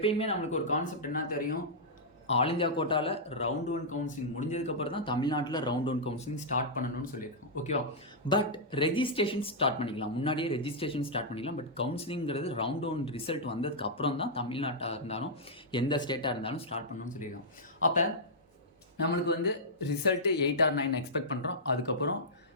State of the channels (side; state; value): both; normal; correlation -0.10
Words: நம்மளுக்கு ஒரு கான்செப்ட் என்ன தெரியும், ஆல் இந்தியா கோட்டாவில் ரவுண்ட் 1 கவுன்சிலிங் முடிஞ்சதுக்கப்புறம் தான் தமிழ்நாட்டில் ரவுண்ட் 1 கவுன்சிலிங் ஸ்டார்ட் பண்ணணும்னு சொல்லியிருக்கோம். ஓகேவா, பட் ரெஜிஸ்ட்ரேஷன் ஸ்டார்ட் பண்ணிக்கலாம், முன்னாடியே ரெஜிஸ்ட்ரேஷன் ஸ்டார்ட் பண்ணிக்கலாம். பட் கவுன்சிலிங்கிறது ரவுண்ட் 1 ரிசல்ட் வந்ததுக்கு அப்புறம் தான் தமிழ்நாட்டாக இருந்தாலும் எந்த ஸ்டேட்டாக இருந்தாலும் ஸ்டார்ட் பண்ணணும்னு சொல்லியிருக்கோம். அப்போ நம்மளுக்கு வந்து ரிசல்ட்டு 8 or 9 எக்ஸ்பெக்ட் பண்ணுறோம். அதுக்கப்புறம்